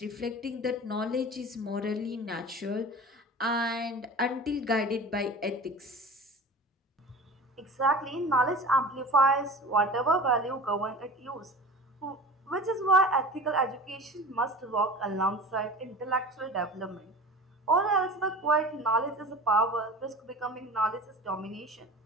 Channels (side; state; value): both; normal; correlation 0.37